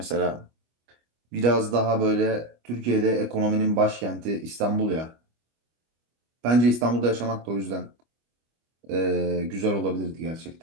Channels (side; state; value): left; late; 25 ms